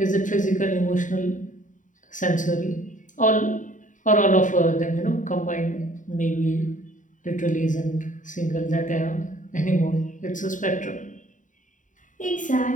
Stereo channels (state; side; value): late; right; 0.37 ms